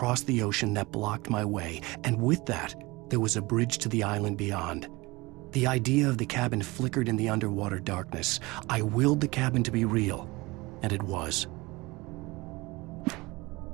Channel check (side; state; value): left; quieter; 22.7 dB